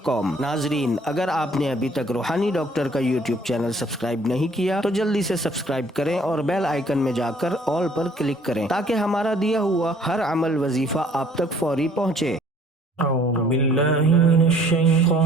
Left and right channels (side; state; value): both; normal; correlation 0.58